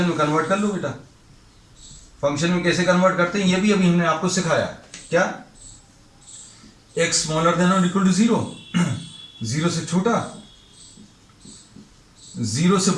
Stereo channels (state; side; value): identical; both; correlation 1.00